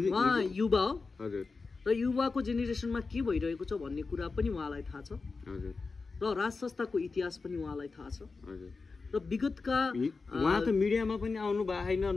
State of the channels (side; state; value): right; quieter; 4.2 dB